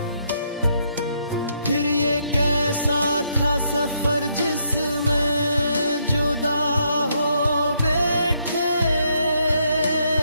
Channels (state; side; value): inverted; both; correlation -0.74